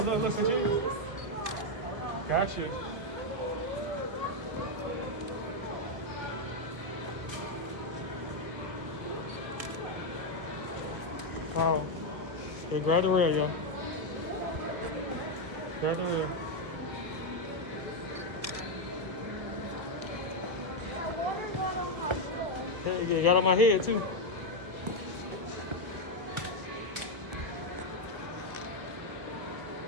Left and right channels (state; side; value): late; left; 1.5 ms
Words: some cheese. Gotcha. Yeah, grab the ring, yo. Grab the ring. Yeah, you got on my head, too.